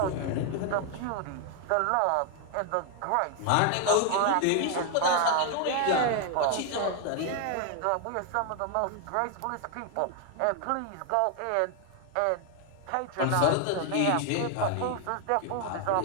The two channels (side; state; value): both; different; correlation 0.00